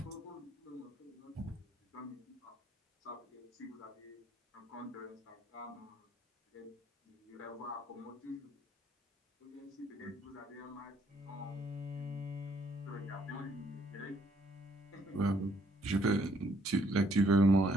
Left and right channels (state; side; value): normal; both; correlation 0.68